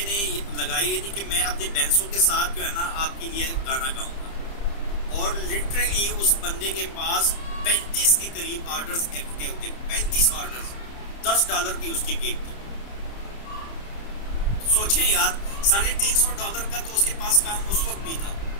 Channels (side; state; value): right; late; 30 ms